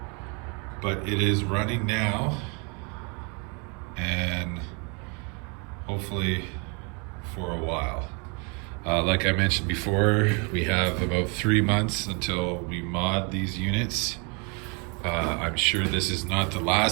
But it is running now, and hopefully for a while. Like I mentioned before, we have about 3 months until we mod these units. I'm sure this is not the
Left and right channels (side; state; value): left; quieter; 33.7 dB